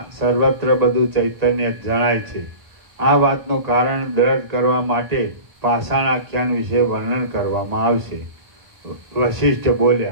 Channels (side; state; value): left; late; 1.4 ms